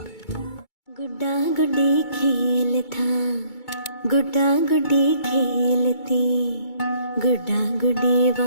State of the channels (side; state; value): right; late; 2.2 ms